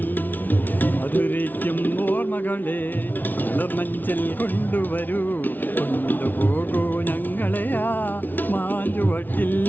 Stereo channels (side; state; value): right; late; 0.084 ms